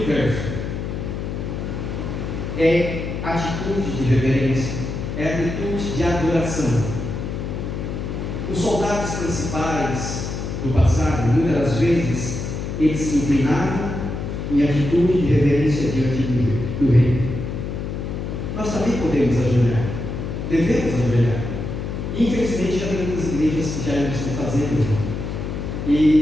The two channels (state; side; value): noise; left; hum, 5 dB below the sound